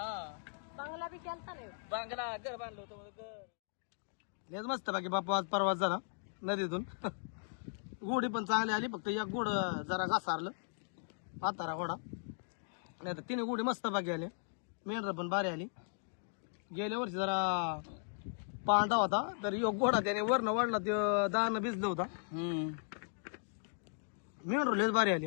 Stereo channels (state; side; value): silent; right; digital silence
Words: बंगला बी केलता नाही. बांगला घर बांधलं होतं मला, घर. लयच मस्त बाकी बापू आज प्रवास झाला नदीतून. गोडी पण चांगली आली, फक्त एक गोड जरा घासारलं म्हातारा घोडा. नाही तर 3 गोडी मस्त बाकी आली. मेंढर पण भारी आली. गेल्या वर्षी जरा पांढरा होता तर एक घोडा त्याने वरनं वाढला, ते दाणं भिजलं होता. मेंढर लयच भारी आली.